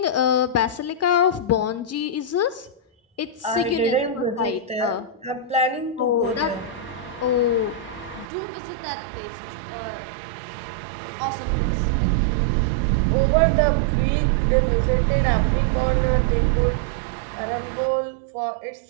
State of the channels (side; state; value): left; drops out; at 8.2 s